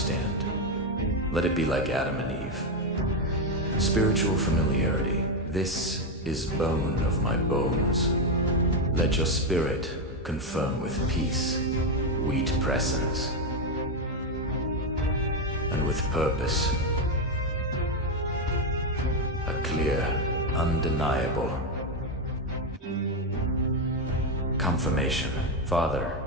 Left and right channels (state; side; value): normal; both; correlation 0.07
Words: Let it be like Adam and Eve. Spiritual familiarity. This is bone of my bones. Let your spirit confirm with peace, wheat presence, and with purpose. A clear, undeniable confirmation. Father,